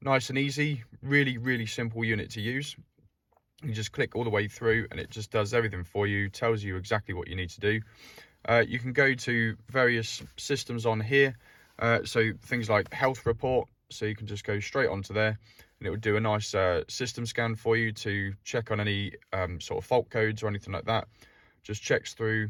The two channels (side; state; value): both; identical; correlation 1.00